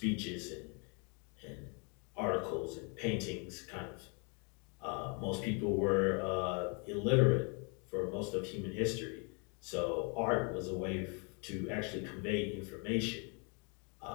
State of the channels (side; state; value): right; quieter; 35.6 dB